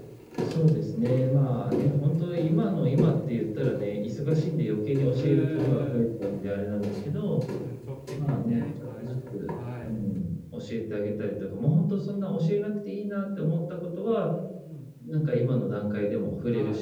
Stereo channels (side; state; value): both; identical; correlation 1.00